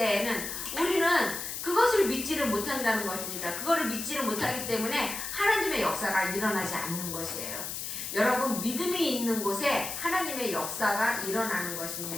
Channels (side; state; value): left; noise; hiss, 5 dB below the sound